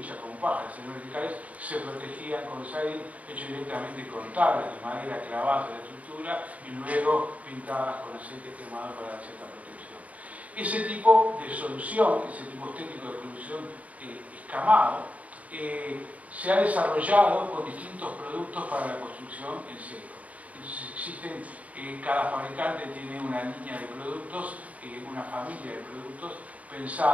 con paja, verticales, se protegían con siding hecho directamente con tablas de madera clavadas en la estructura y luego pintadas con aceite quemado para dar cierta protección. Ese tipo de solución, ese tipo estético de solución escamado, se ha desarrollado con distintos productos para la construcción en seco. Entonces existen, cada fabricante tiene una línea de productos, una familia de productos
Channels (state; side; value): late; left; 0.069 ms